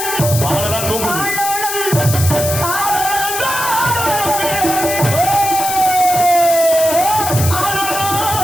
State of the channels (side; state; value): left; noise; hiss, 4 dB below the sound